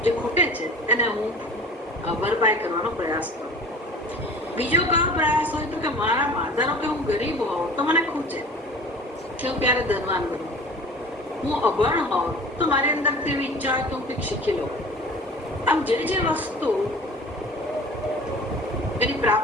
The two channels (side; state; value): both; normal; correlation 0.42